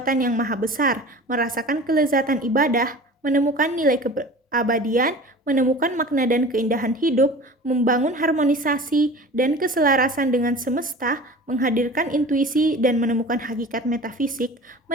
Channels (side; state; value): both; normal; correlation 0.39